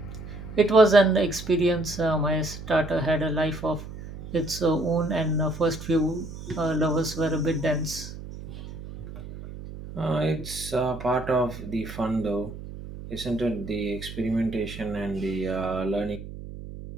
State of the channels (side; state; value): right; noise; hum, 12 dB below the sound